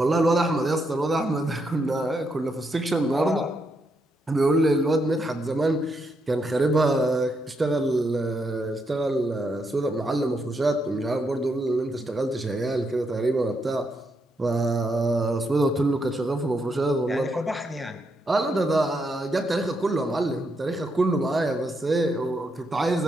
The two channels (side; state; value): both; normal; correlation 0.80